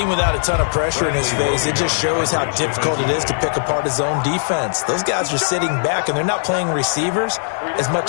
without a ton of pressure in his face, it just shows how difficult it is to pick apart his own defense. Those guys are sitting back, and they're not playing receivers as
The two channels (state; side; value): silent; right; digital silence